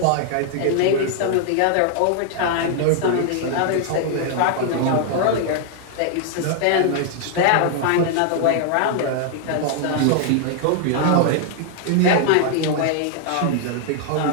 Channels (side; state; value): both; different; correlation 0.00